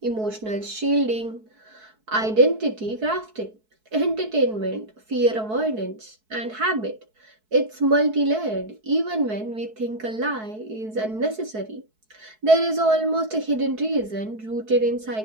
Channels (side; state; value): left; late; 4.6 ms